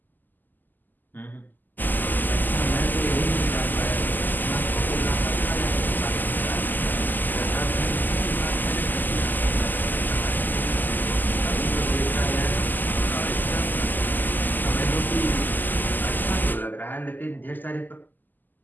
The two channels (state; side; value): late; right; 0.087 ms